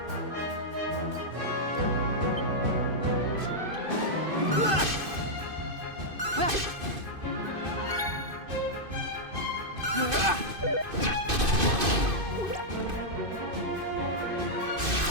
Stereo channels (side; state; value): left; late; 2.5 ms